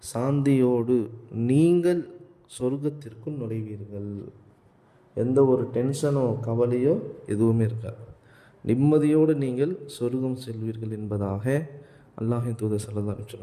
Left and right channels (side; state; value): both; identical; correlation 1.00